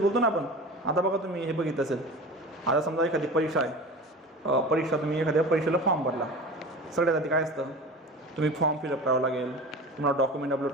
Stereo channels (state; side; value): normal; both; correlation 0.34